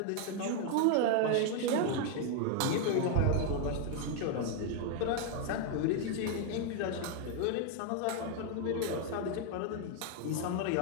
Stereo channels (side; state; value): both; different; correlation 0.00